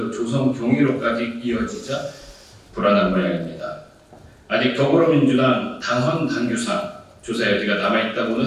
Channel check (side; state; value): both; identical; correlation 1.00